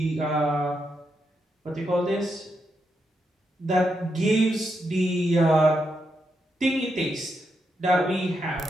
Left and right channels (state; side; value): normal; both; correlation 0.83